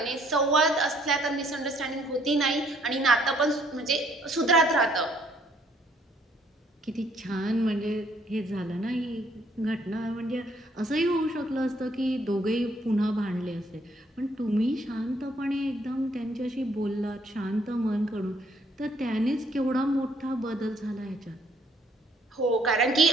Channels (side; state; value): both; normal; correlation 0.65